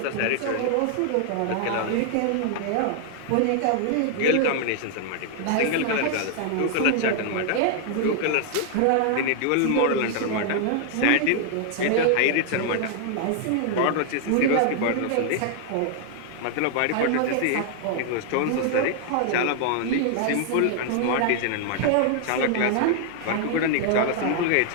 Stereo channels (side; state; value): both; different; correlation 0.00